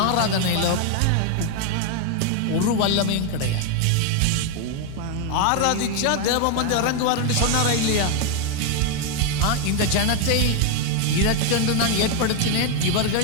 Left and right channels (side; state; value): both; different; correlation 0.01